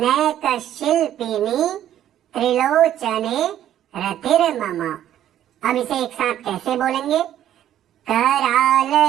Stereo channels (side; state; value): left; quieter; 11.4 dB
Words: नैक शिल्पिनी त्रिलोचने रतिर्मम। अब इसे एक साथ कैसे बोलेंगे? कराल